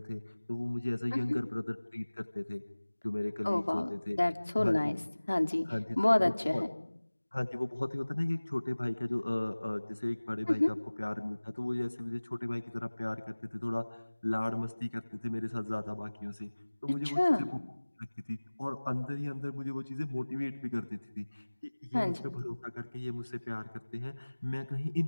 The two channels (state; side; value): inverted; both; correlation -1.00